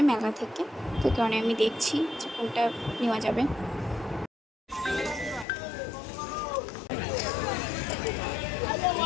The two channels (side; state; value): right; drops out; at 5.5 s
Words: মেলা থেকে, তো কারণে আমি দেখছি যে কোনটা নেওয়া যাবে।